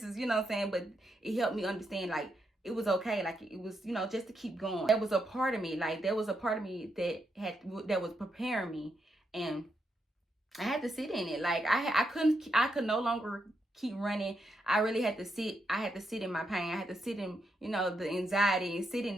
is, you know what I'm saying? But it helped me understand, like, it was okay. Like, it was, just to keep going. There was a part of me, that was preparing me, and I had to sit in it. Like, I could no longer keep running. I really had to sit. I had to sit in my pain. I had to sit in, the anxiety, and sit in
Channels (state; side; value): normal; both; correlation 0.81